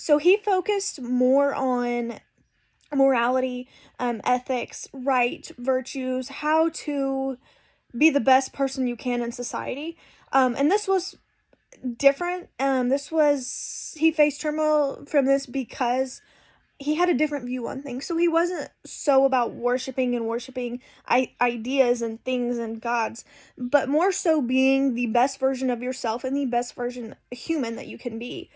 he focused more on morality, ethics, right, virtues, how to be the best person you can in society. And this was different. He faced turmoil from this because he had a different view on things. So he wasn't so about worshiping ideas and things and gods, but more so being the best version of yourself and the best version human that you can be.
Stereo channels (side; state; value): both; identical; correlation 1.00